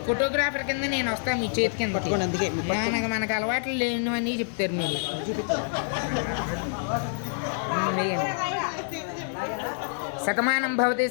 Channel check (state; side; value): silent; right; digital silence